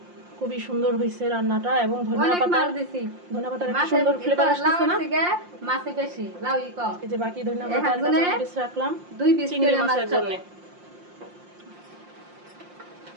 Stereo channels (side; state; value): left; late; 5.7 ms